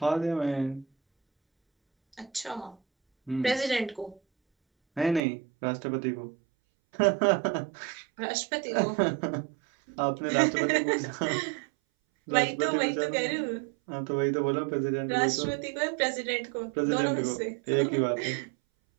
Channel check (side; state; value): left; drops out; at 5.2 s